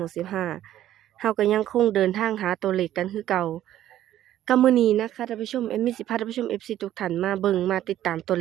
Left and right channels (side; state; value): left; quieter; 12.5 dB